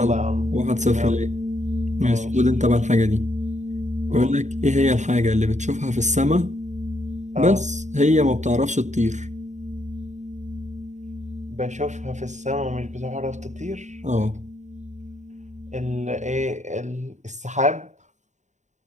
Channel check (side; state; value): left; late; 0.34 ms